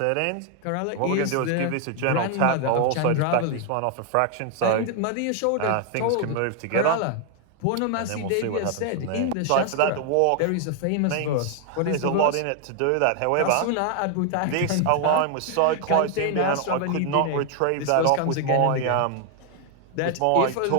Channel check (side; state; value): both; different; correlation 0.00